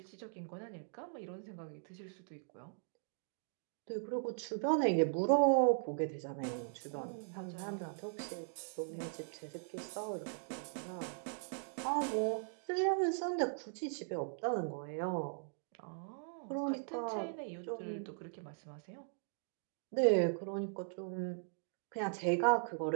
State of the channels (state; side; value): silent; left; digital silence